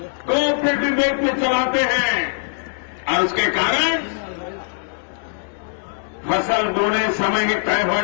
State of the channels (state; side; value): silent; right; digital silence